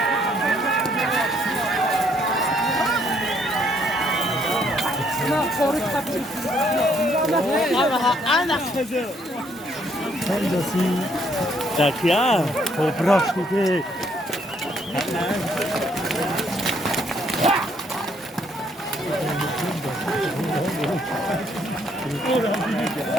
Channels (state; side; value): normal; both; correlation 0.68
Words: Sen de sin. Tak ya. Toprak gibi.